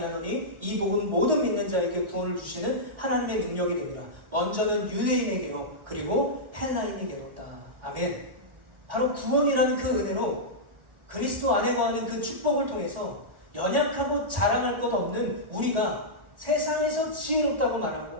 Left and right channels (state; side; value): late; left; 1.4 ms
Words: 이 복음 모든 믿는 자에게 구원을 주시는 하나님의 능력이 되리라. 먼저는 유대인에게요, 그리고 헬라인에게로다. 아멘. 바로 구원이라는 그 은혜로 그리스도 안에 거하는 그 축복을 통해서 연약하고 자랑할 것 없는 우리가 세상에서 지혜롭다고 말하고